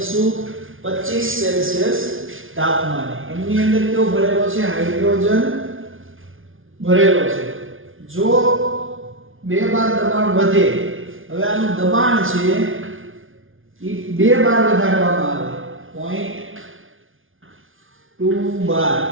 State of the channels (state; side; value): late; left; 0.58 ms